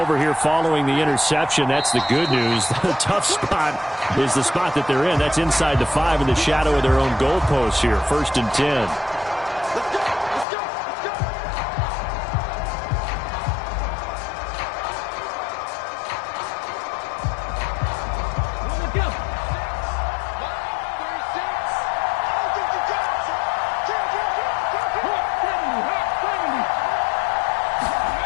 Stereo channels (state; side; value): drops out; right; at 10.5 s